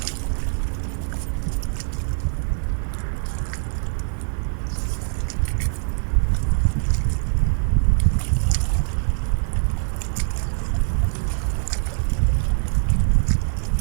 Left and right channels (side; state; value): left; silent; digital silence